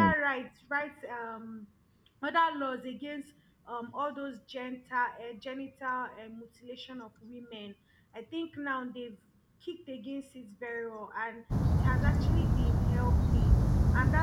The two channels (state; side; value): identical; both; correlation 1.00